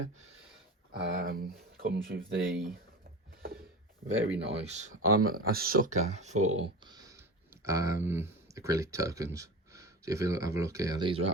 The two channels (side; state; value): both; normal; correlation 0.29